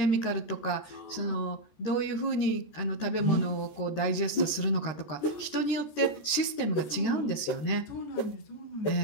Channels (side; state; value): right; late; 14 ms